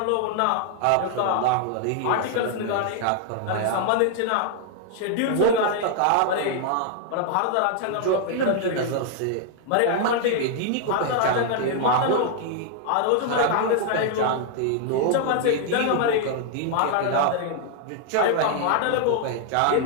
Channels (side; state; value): both; different; correlation 0.00